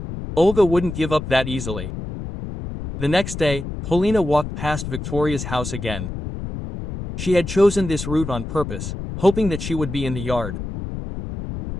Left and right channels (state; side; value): noise; left; rumble, 7 dB below the sound